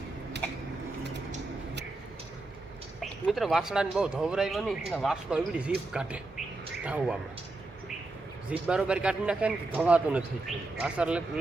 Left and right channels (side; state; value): left; quieter; 3.1 dB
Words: मित्र वासड़ा बहुत धवरायो नहीं ना वासड़ो एवडी जीभ काटे धाववामां जीभ बरोबर काटी नाखे ने धवातो नथी वासर